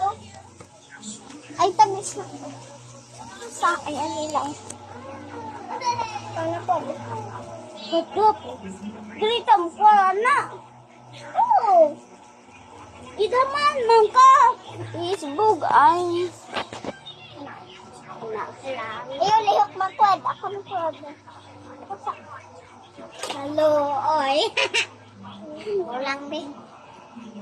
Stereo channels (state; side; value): identical; both; correlation 1.00